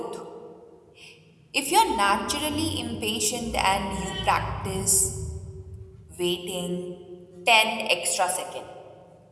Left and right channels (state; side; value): identical; both; correlation 1.00